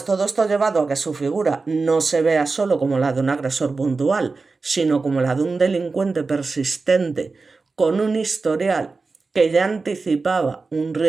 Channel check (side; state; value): left; quieter; 4.1 dB